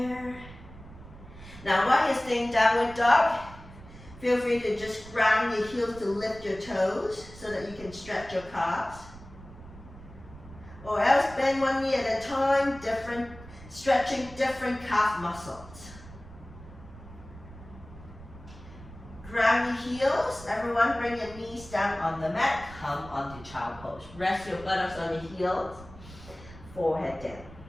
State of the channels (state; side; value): noise; right; rumble, 17 dB below the sound